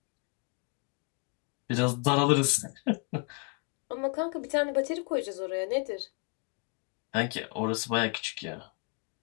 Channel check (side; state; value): right; quieter; 33.7 dB